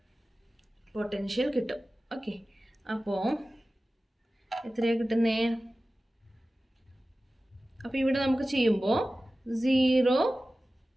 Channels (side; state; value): both; normal; correlation 0.96